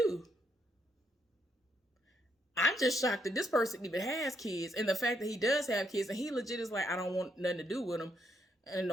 I'm just shocked that this person even has kids, and the fact that he does have kids and he legit is like, I don't want nothing to do with them, and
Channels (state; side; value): normal; both; correlation 0.75